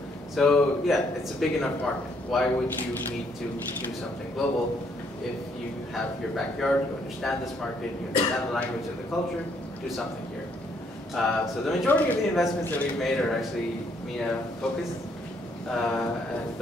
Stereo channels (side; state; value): both; normal; correlation 0.70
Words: So yeah, it's a big enough market. Why would you need to do something global if you have your backyard, you understand this market, you understand the language and the culture, do something here. So the majority of the investments that we've made are actually MENA focused, and